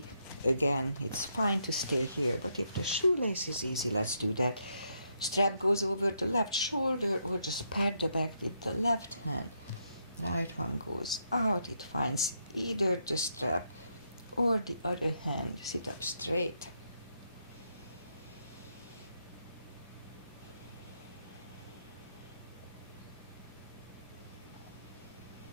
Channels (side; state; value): both; inverted; correlation -0.77